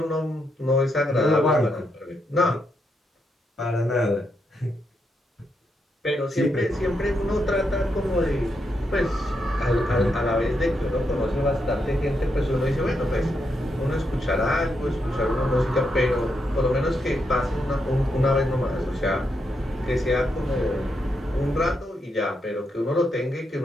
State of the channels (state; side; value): normal; both; correlation 0.81